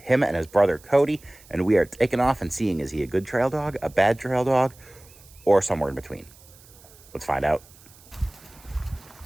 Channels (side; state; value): right; noise; hiss, 24 dB below the sound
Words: and his brother Cody, and we are taking off and seeing, is he a good trail dog, a bad trail dog, or somewhere in between? Let's find out.